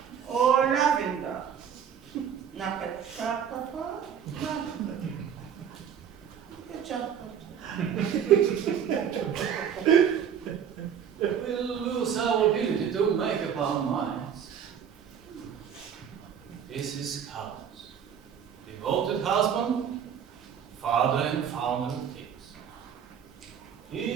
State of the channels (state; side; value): quieter; left; 8.3 dB